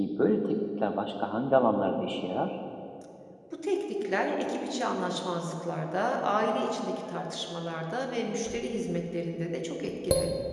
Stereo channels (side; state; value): both; identical; correlation 1.00